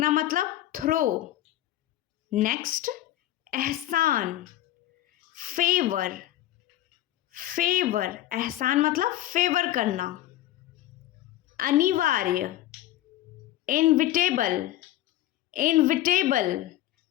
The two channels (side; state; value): right; quieter; 14.1 dB